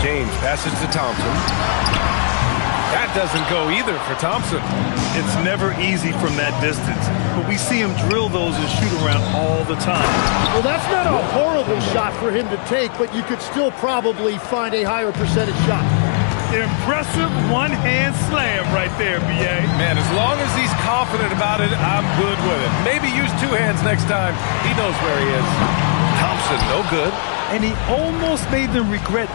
passes to Thompson. That doesn't go either for Thompson. It's never easy from that distance, but we see him drill those and shoot around all the time. Well, that's not a horrible shot for him to take, but you could still probably find a higher percentage shot. Impressive one-hand slam right there, B.A. Man, as long as he's confident about it, I'm good with it. Maybe use 2 hands next time. He knows where he is. Thompson, no good. And he almost made them regret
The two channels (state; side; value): silent; right; digital silence